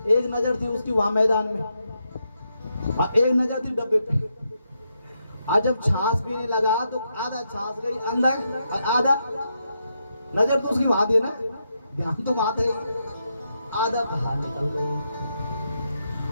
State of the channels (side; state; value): both; inverted; correlation -0.83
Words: एक नजर थी उसकी वहां मैदान में और एक नजर थी डब्बे पे। और जब छाछ पीने लगा तो आधा छाछ गई अंदर और आधा, नजर तो उसकी वहां थी ना, ध्यान तो वहां था, आधा बाहर निकल गई।